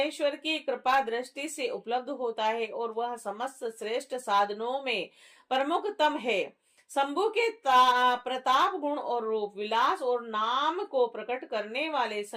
की कृपा दृष्टि से उपलब्ध होता है और वह समस्त श्रेष्ठ साधनों में प्रमुखतम है। शंभु के प्रताप, गुण और रूप, विलास और नाम को प्रकट करने वाले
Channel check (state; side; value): identical; both; correlation 1.00